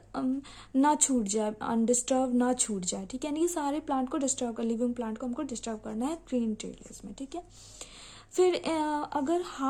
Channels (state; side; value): identical; both; correlation 1.00